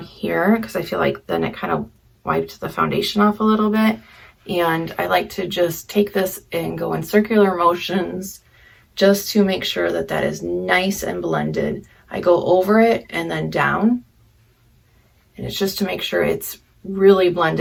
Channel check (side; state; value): both; identical; correlation 1.00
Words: here because I feel like then it kind of wiped the foundation off a little bit. And I like to just take this and go in circular motions just to make sure that that is nice and blended. I go over it and then down, and it's just to make sure it's really